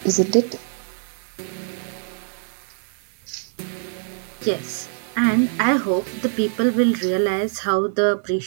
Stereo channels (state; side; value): silent; left; digital silence